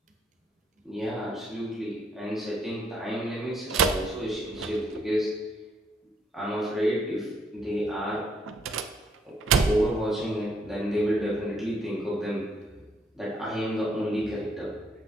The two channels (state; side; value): normal; both; correlation 0.70